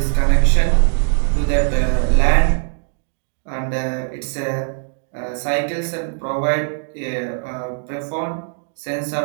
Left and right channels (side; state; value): left; silent; 63 dB below the other